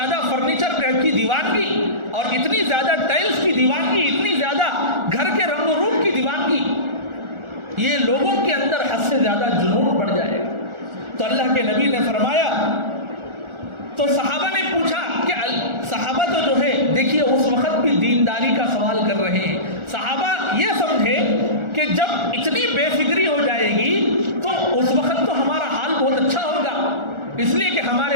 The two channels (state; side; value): late; left; 1.4 ms